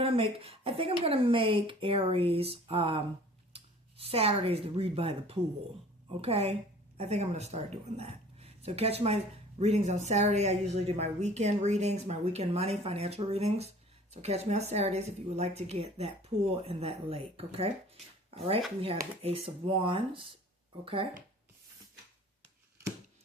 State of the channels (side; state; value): both; normal; correlation 0.49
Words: I'm going to make Aries Saturdays to read by the pool. Okay? I think I'm going to start doing that. So catch my readings on Saturday. I usually do my weekend readings, my weekend money, financial readings. So catch me on Saturdays if you would like to get that pool and that lake. Okay? All right. We have the Ace of Wands. Okay?